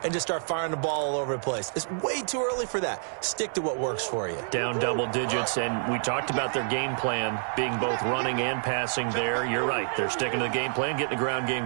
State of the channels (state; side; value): silent; left; 59 dB below the other